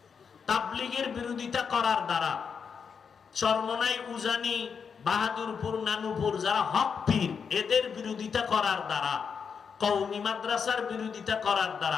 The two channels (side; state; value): right; quieter; 6.3 dB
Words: তাবলীগের বিরোধিতা করার দ্বারা চরমনাই, উজানি, বাহাদুরপুর, নানুপুর যারা হক পীর, এদের বিরোধিতা করার দ্বারা, কওমি মাদ্রাসার বিরোধিতা করার